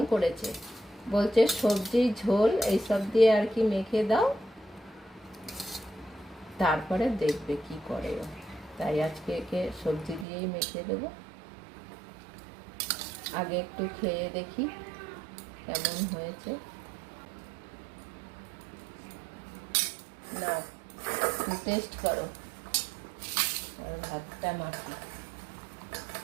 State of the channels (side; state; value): left; drops out; at 10.2 s